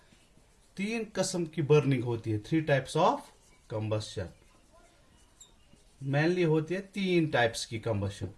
तीन किस्म की burning होती है. Three types of combustion. Mainly होती है तीन टाइप्स की combustion.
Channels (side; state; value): both; identical; correlation 1.00